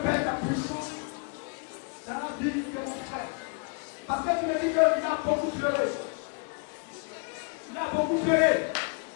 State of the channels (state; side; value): quieter; right; 37.7 dB